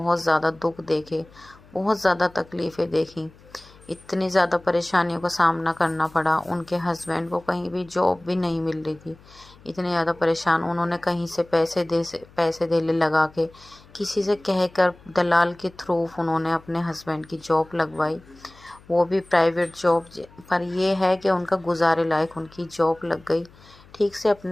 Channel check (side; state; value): left; noise; hum, 25 dB below the sound